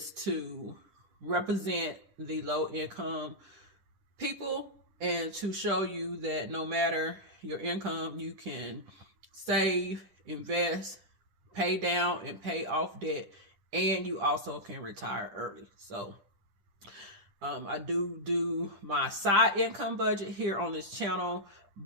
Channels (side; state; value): left; late; 10 ms